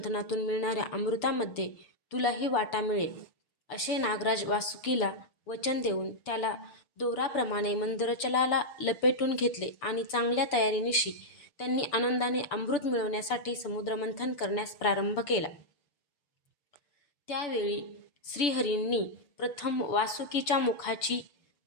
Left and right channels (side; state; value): right; late; 6.9 ms